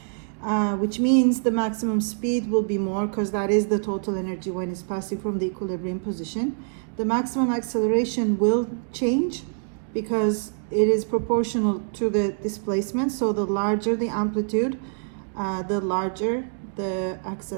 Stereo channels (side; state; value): left; silent; digital silence